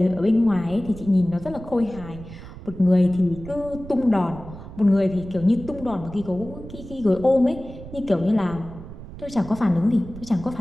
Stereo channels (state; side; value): noise; right; rumble, 14 dB below the sound